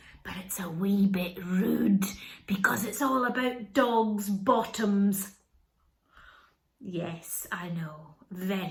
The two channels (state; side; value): identical; both; correlation 1.00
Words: but it's a wee bit rude because it's all about dogs' bottoms. Yes, I know,